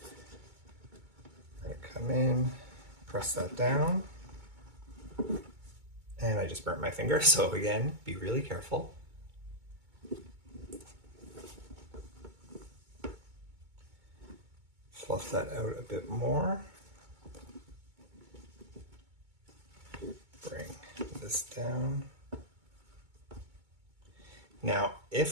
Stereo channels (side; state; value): left; late; 2.2 ms